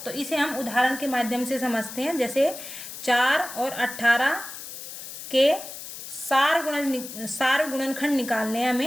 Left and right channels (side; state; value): left; noise; hiss, 11 dB below the sound